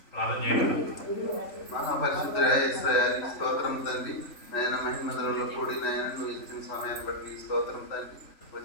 స్తోత్రం తండ్రి. నాయన మహిమధులలో కూడి నాయన నువ్వు ఇచ్చిన సమయాన్ని బట్టి నీ స్తోత్రం తండ్రి.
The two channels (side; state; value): right; late; 3.5 ms